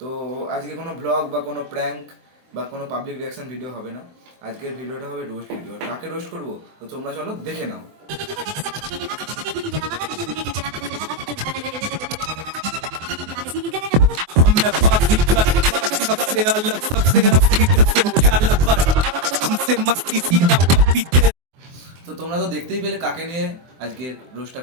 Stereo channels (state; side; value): late; left; 24 ms